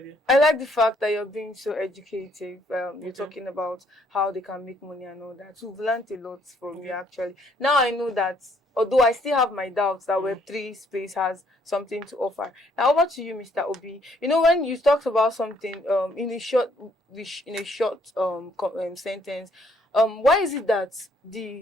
dear. I like the fact that you're being so educative. You're Okay. talking about how they can make money and all that. We've learned a lot from you actually. Now I know that, although I still have my doubts that Web3 space has something to offer. Now over to you, Mr. Obi. You know, when you talked about something in a short sentence, why is it that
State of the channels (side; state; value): both; normal; correlation 0.67